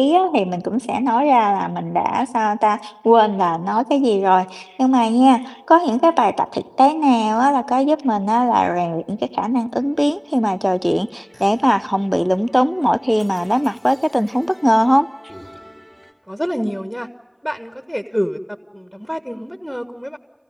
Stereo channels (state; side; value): identical; both; correlation 1.00